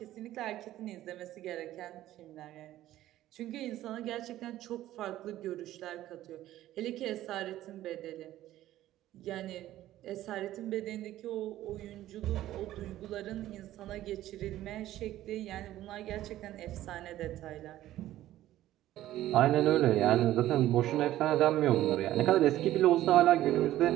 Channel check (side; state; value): left; quieter; 14.1 dB